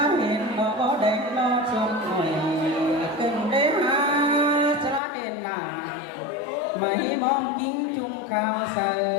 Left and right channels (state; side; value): drops out; right; at 5.0 s